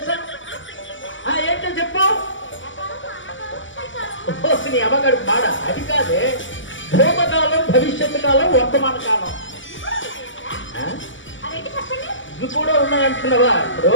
ఏంటో చెప్పు. నీ అమ్మగాడు బాడ అది కాదే, భూతకాలం, భవిష్యత్తు కాలం, వర్తమాన కాలం ఇవి కూడా ఉన్నాయంటున్నావా? ఇప్పుడు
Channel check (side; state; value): right; late; 0.56 ms